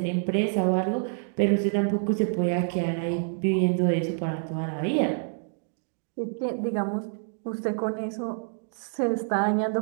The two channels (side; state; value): left; silent; 60 dB below the other